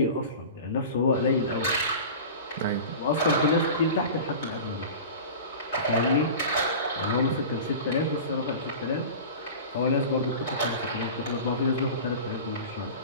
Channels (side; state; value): both; inverted; correlation -0.34